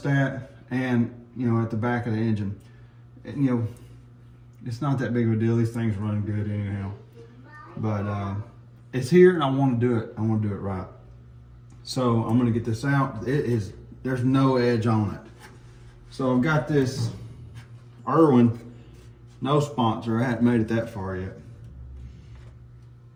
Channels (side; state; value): both; identical; correlation 1.00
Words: and at the back of the engine. And, it's not that big of a deal. These things run good anyhow. But it's here and I want to do it. I want to do it right. So I'm gonna get this out. There's no edge on it. So I've got this Irwin, no sponsor. I haven't made it that far yet.